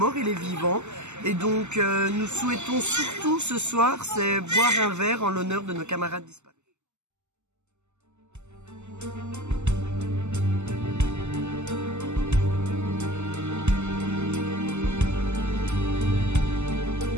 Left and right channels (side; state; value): left; late; 0.83 ms